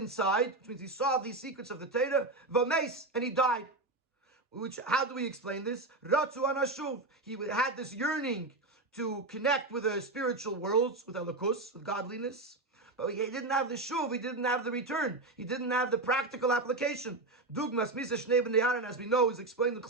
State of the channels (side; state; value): left; quieter; 3.0 dB